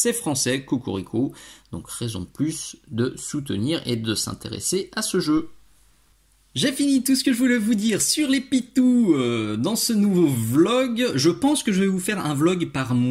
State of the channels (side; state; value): both; identical; correlation 1.00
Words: français, cocorico. Donc raison de plus de soutenir et de s'intéresser à ce jeu. J'ai fini tout ce que je voulais vous dire sur les pitous dans ce nouveau vlog. Je pense que je vais vous faire un vlog par